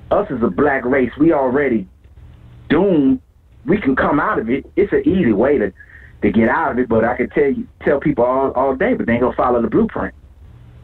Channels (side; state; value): both; identical; correlation 1.00